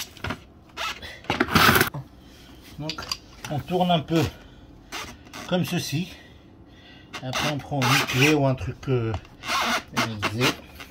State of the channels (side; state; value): both; identical; correlation 1.00